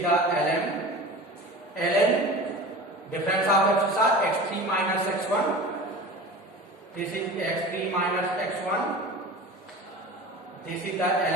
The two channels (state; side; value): normal; both; correlation 0.35